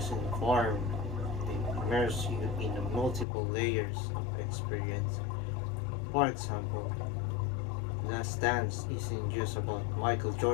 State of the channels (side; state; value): right; drops out; at 3.2 s